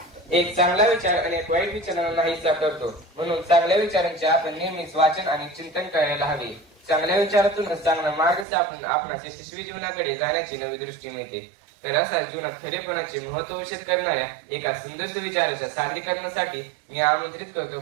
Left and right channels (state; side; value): drops out; left; at 8.5 s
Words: एक चांगला विचार अनेक वाईट विचारांना नाहीसा करतो. म्हणून चांगल्या विचारांचे आपण नेहमीच वाचन आणि चिंतन करायला हवे. चांगल्या विचारातूनच चांगला मार्ग साधून आपणास यशस्वी जीवनाकडे जाण्याची नवी दृष्टी मिळते. तर असा जीवनात खरेपणाचे महत्व विषद करणाऱ्या एका सुंदर विचाराच्या सादरीकरणासाठी मी आमंत्रित करतो